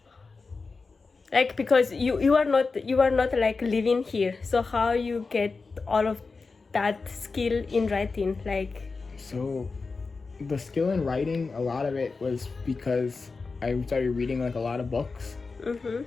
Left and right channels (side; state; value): right; quieter; 4.3 dB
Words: Like because you are not like living here. So how you get all of that skill in writing, like? So the skill in writing, a lot of it was because I started reading like a lot of books.